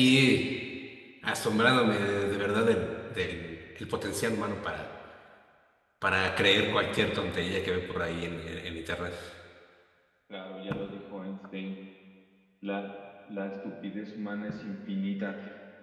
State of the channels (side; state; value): both; identical; correlation 1.00